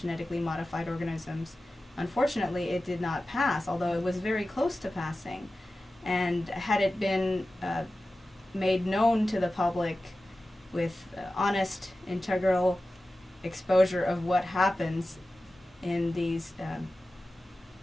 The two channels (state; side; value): normal; both; correlation 0.95